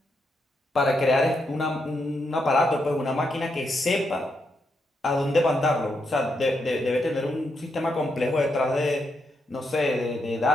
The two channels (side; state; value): both; normal; correlation 0.81